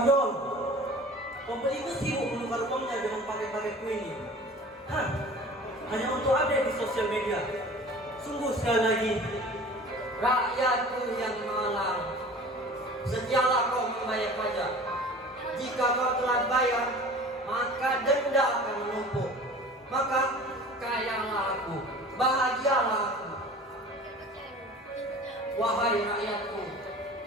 Pembeli itu sibuk menukar uangnya dengan paket-paketku ini. Hah, hanya untuk update di sosial media. Sungguh sekali lagi, rakyatku yang malang. Sedialah kau membayar pajak. Jika kau telah bayar, maka denda akan menumpuk. Maka kayalah aku, bahagialah aku. Wahai rakyatku,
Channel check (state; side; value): normal; both; correlation 0.42